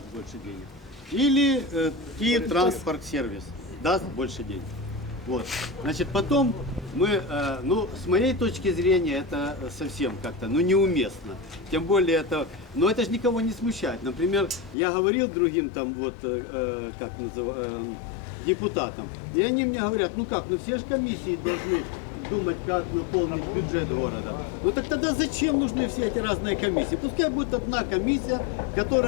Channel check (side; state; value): right; drops out; at 14.8 s